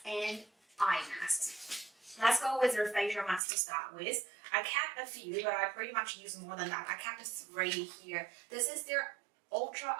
and eye masks. Let's go with their facial mask to start with. I kept a few, but I pretty much use more than that. I kept 3 here. This is their Ultra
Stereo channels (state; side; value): drops out; left; at 3.4 s